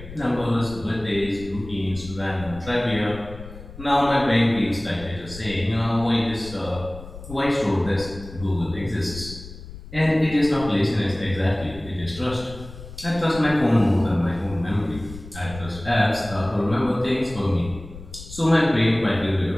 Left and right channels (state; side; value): noise; left; rumble, 14 dB below the sound